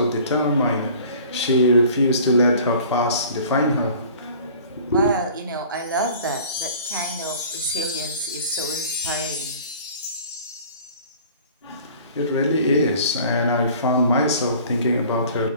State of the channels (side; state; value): both; inverted; correlation -0.47